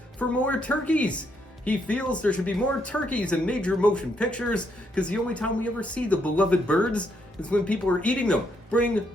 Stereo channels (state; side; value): normal; both; correlation 0.75